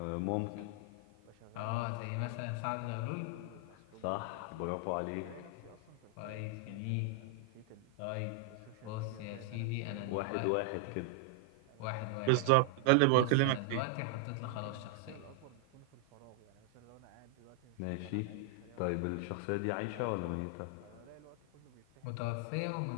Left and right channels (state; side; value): different; both; correlation 0.00